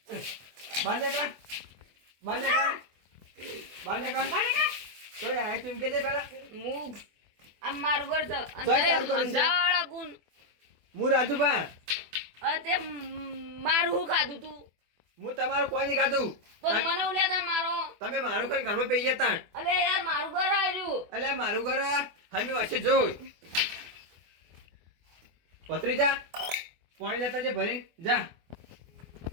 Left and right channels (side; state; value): left; late; 24 ms